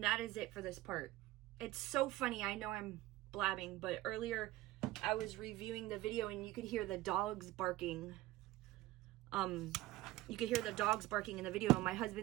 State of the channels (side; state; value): left; quieter; 17.0 dB